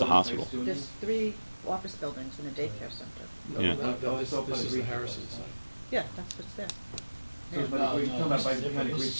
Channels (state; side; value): inverted; both; correlation -1.00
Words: hospital. There's 3 office buildings and a daycare center. No, Yeah. no, this is the Harrison site. Yeah, that's what's there. You're talking about by behind the Greek